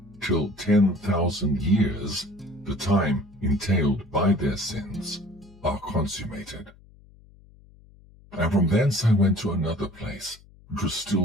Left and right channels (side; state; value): left; noise; hum, 25 dB below the sound